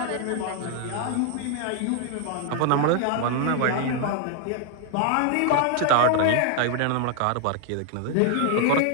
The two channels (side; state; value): both; different; correlation 0.00